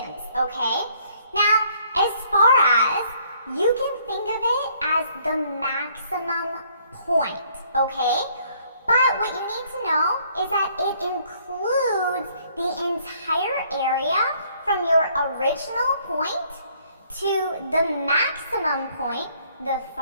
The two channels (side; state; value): both; inverted; correlation -0.64